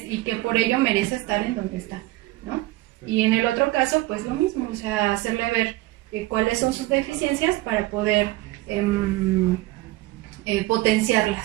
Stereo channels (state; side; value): quieter; left; 18.4 dB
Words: por ello merece estar en donde está, ¿no? Y en el otro caso, pues lo mismo, o sea, hacerle ver cuáles son sus deficiencias para poder